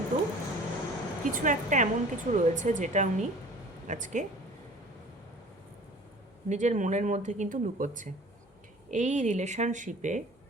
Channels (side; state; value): both; normal; correlation 0.46